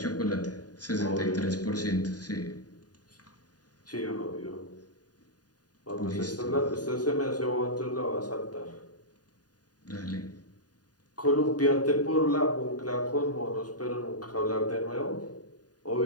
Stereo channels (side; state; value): right; late; 0.68 ms